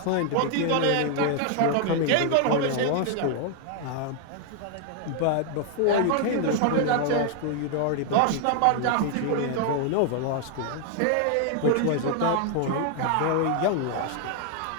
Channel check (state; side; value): different; both; correlation 0.00